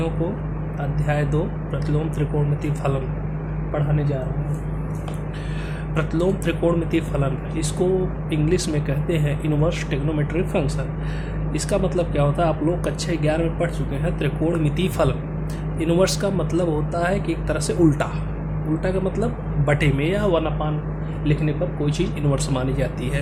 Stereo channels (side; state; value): both; identical; correlation 1.00